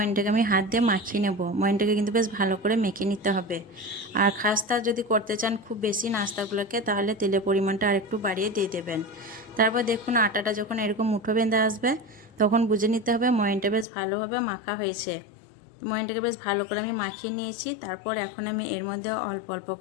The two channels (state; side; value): drops out; right; at 13.9 s